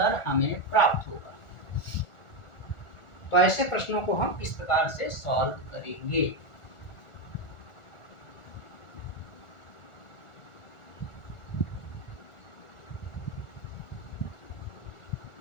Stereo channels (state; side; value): late; right; 1.4 ms